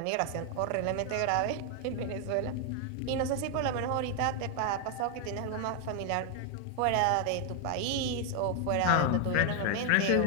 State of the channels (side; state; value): both; different; correlation 0.00